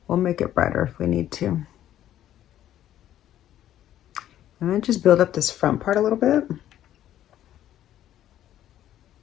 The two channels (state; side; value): quieter; right; 12.0 dB